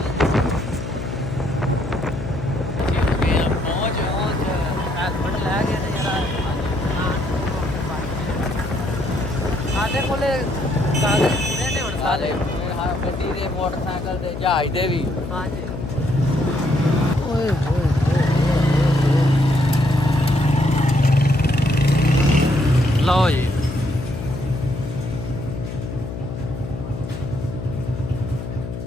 ਸਾਡੇ ਕੋਲੇ ਕਾਗਜ਼ ਪੂਰੇ ਨੇ ਹੁਣ ਸਾਰੇ, ਗੱਡੀ ਦੇ, ਮੋਟਰਸਾਈਕਲ ਦੇ, ਜਹਾਜ਼ ਦੇ ਵੀ। ਹਾਂਜੀ। ਓਏ ਹੋਏ ਲਓ ਜੀ,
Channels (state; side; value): noise; left; hum, 8 dB below the sound